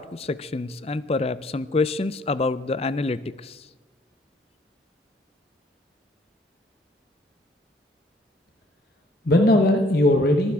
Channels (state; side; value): normal; both; correlation 0.62